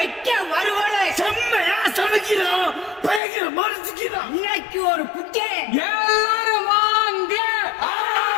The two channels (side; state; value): right; drops out; at 3.2 s